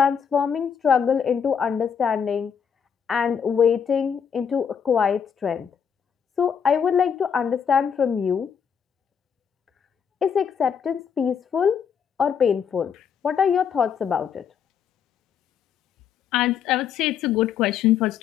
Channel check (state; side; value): quieter; right; 7.3 dB